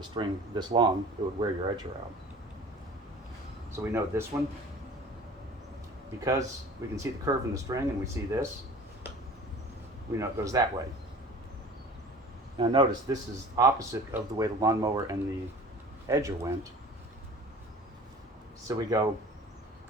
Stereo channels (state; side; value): normal; both; correlation 0.43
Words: string this long. It would wear your edger out. So we know this one, because we can see the curve in the string and we see this, we know it goes that way. Now notice this is opposite of the way the lawnmower and the edger went. So we go